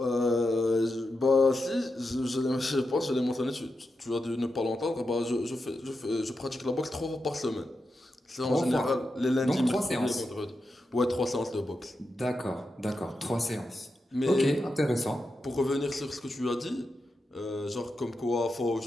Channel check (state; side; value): normal; both; correlation 0.88